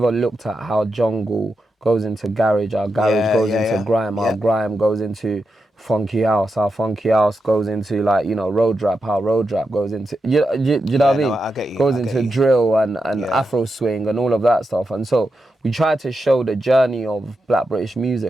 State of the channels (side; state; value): both; normal; correlation 0.87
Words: looked at how jungle goes into garage, our garage goes into grime, our grime goes into funky house, our funky house goes into, like, you know, road rap, how road rap goes into, you know what I mean? No, I get you. Goes into drill and Afro swing and all of that stuff. And so we tried to show the journey of Black British